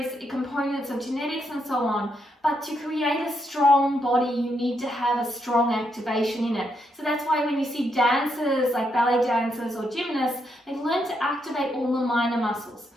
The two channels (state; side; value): normal; both; correlation 0.79